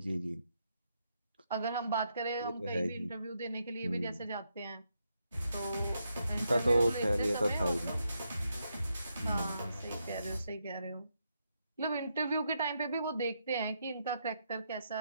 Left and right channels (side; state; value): both; inverted; correlation -0.80